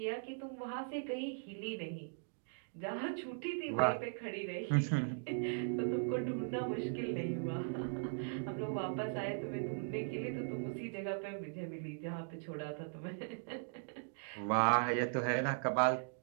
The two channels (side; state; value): left; silent; digital silence